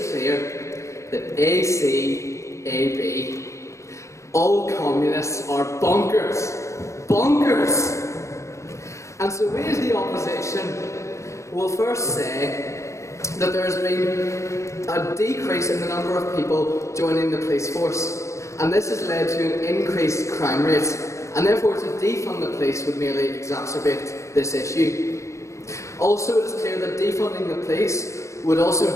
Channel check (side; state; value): right; late; 0.14 ms